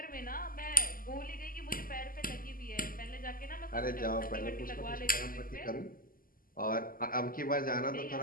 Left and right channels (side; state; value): right; late; 0.41 ms